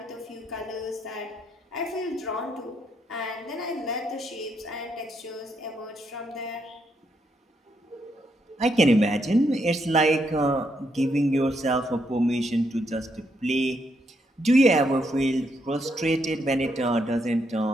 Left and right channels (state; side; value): normal; both; correlation 0.77